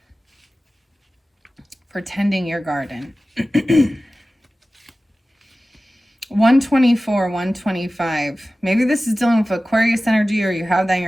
For tending your garden. 124, 125. Maybe this is dealing with Aquarius energy, or you have that in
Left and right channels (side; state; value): both; normal; correlation 0.96